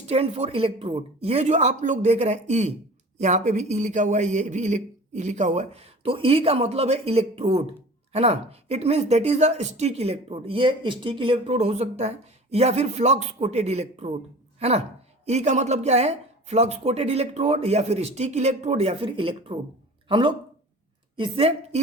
फॉर इलेक्ट्रोड। ये जो आप लोग देख रहे हैं ई, यहाँ पे भी ई लिखा हुआ है, ये भी ई लिखा हुआ है, तो ई का मतलब है इलेक्ट्रोड, है ना। It means that is a stick electrode. ये स्टिक इलेक्ट्रोड हो सकता है या फिर फ्लक्स कोटेड इलेक्ट्रोड, है ना। ई का मतलब क्या है, फ्लक्स कोटेड इलेक्ट्रोड या फिर स्टिक इलेक्ट्रोड या फिर इलेक्ट्रोड। हम लोग इससे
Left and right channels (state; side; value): normal; both; correlation 0.40